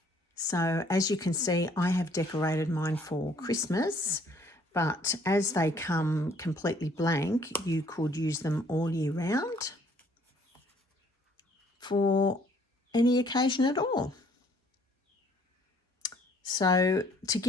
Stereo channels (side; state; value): both; normal; correlation 0.61